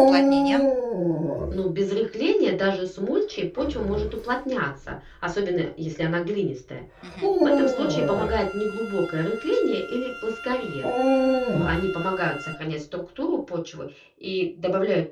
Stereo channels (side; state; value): both; identical; correlation 1.00